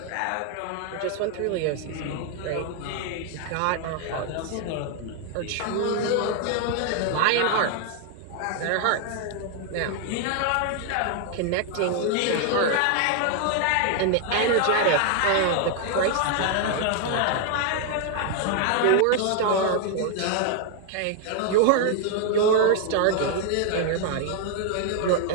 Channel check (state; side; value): different; both; correlation 0.00